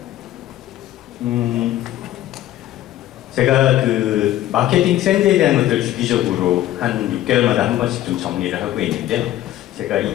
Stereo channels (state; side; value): quieter; right; 13.6 dB